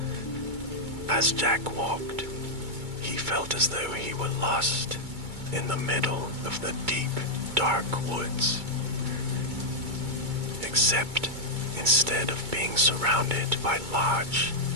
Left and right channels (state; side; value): late; left; 2.2 ms